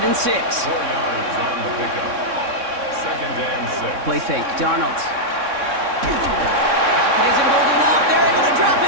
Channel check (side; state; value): left; late; 3.6 ms